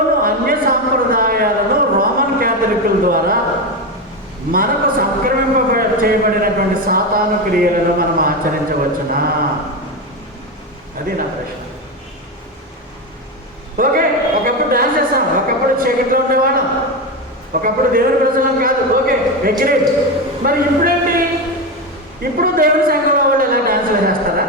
అన్య సాంప్రదాయాలను రోమన్ క్యాథలికుల ద్వారా మనకు సంక్రమింప చేయబడినటువంటి సాతాను క్రియలను మనం ఆచరించవచ్చునా? అది నా ప్రశ్న. ఓకే, ఒకప్పుడు డాన్స్ చేస్తాం, ఒకప్పుడు చీకట్లో ఉండేవాళ్ళం, ఒకప్పుడు దేవుని ప్రజలం కాదు, ఓకే అగ్రీడ్. మరి ఇప్పుడేంటి? ఇప్పుడు దేవుని సంఘంలో వాళ్ళు ఎలా డాన్సులు చేస్తారా?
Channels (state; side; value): normal; both; correlation 0.15